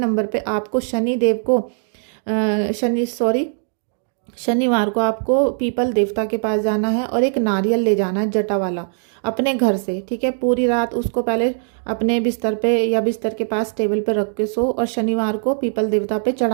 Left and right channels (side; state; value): left; silent; digital silence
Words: पे आपको शनि देव को शनिवार को आपको पीपल देवता के पास जाना है और एक नारियल ले जाना है जटा वाला अपने घर से, ठीक है। पूरी रात उसको पहले अपने बिस्तर पे या बिस्तर के पास टेबल पे रख के सो, और शनिवार को पीपल देवता पे